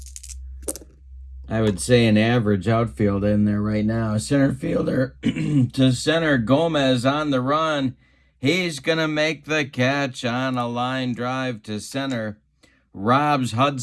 I would say an average outfield in there right now. Center fielder to center, Gomez on the run. He's going to make the catch on a line drive to center. Robs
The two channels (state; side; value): identical; both; correlation 1.00